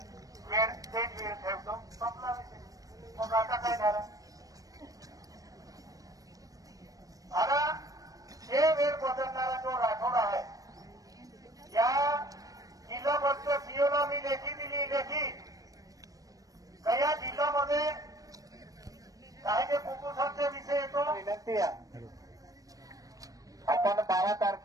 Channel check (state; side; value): late; left; 0.17 ms